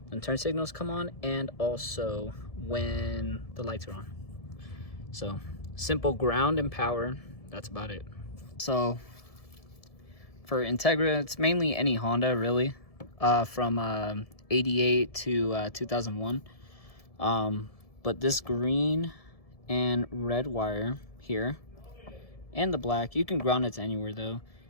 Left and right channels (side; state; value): right; late; 1.7 ms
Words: turn signals come on and also when the lights are on. So simple ground and power, that's about it. So for Integra, it's mainly any Honda really, from 88 to 2001. But this green and red wire here, and the black, you can ground it to anywhere though,